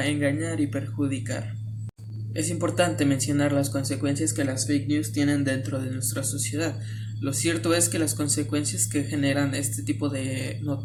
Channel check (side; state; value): both; identical; correlation 1.00